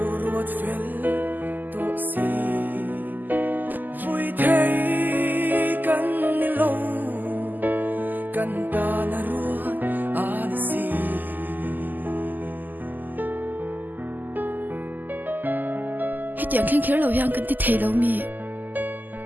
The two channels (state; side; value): late; left; 0.086 ms